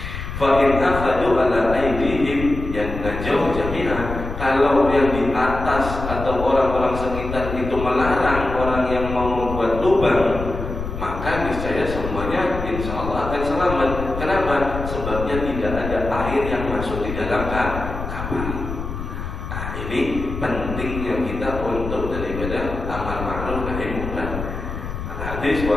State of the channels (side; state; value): left; noise; rumble, 7 dB below the sound